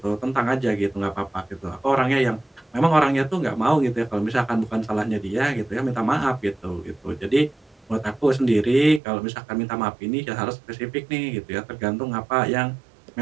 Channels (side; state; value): left; drops out; at 9.0 s